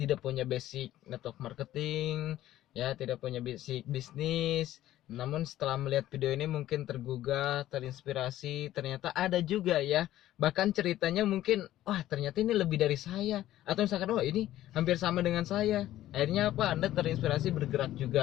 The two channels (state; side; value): quieter; right; 13.8 dB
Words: punya basic network marketing, ya tidak punya basic bisnis. Namun setelah melihat video ini mungkin tergugah, terinspirasi. Ternyata ada juga ya, bahkan ceritanya mungkin wah ternyata ini lebih dari saya, atau misalkan wah ini hampir sama dengan saya. Akhirnya apa, Anda terinspirasi bergerak